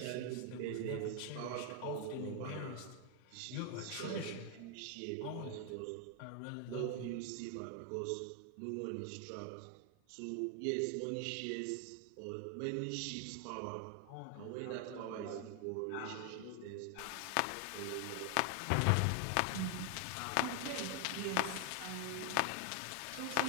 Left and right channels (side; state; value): both; different; correlation 0.00